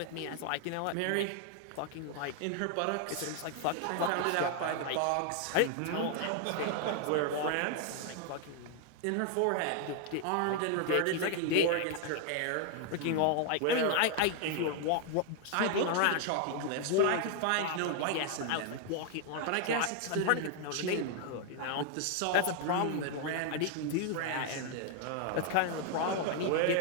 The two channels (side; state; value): both; different; correlation 0.00